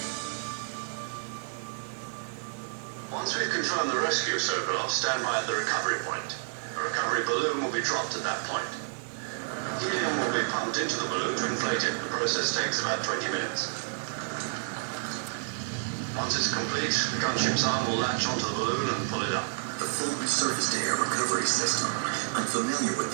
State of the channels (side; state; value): left; silent; 56 dB below the other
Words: Once we've confirmed the rescue of Sokolov, stand by at the recovery point. A recovery balloon will be dropped at that point. Helium will be pumped into the balloon to inflate it. The process takes about 20 minutes. Once it's complete, the gunship's arm will latch onto the balloon and pull it up. The full surface-to-air recovery system. I'm familiar with